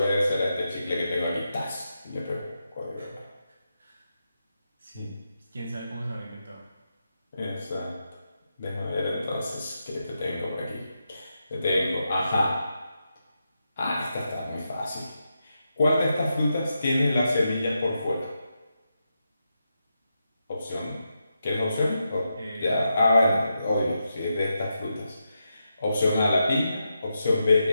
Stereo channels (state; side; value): inverted; both; correlation -0.86